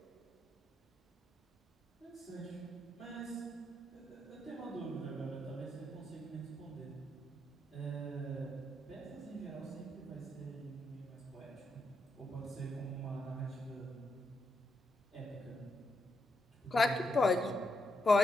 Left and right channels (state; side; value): normal; both; correlation 0.81